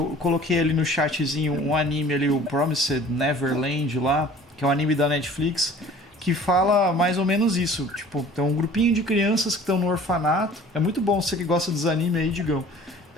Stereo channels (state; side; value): normal; both; correlation 0.48